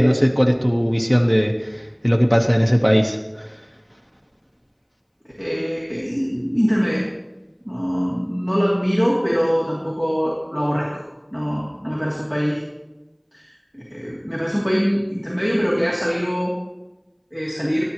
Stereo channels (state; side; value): identical; both; correlation 1.00